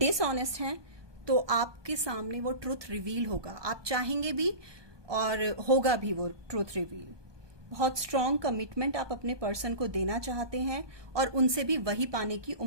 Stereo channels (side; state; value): left; late; 1.2 ms